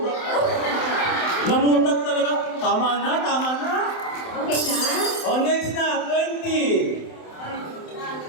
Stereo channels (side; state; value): right; late; 27 ms